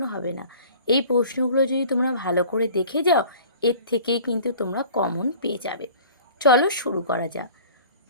হবে না। এই প্রশ্নগুলো যদি তোমরা ভালো করে দেখে যাও, এর থেকেই কিন্তু তোমরা কমন পেয়ে যাবে। চলো শুরু করা যাক।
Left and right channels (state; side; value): inverted; both; correlation -0.46